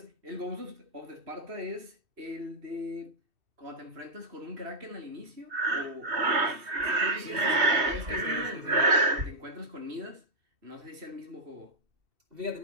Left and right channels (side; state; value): left; late; 2.7 ms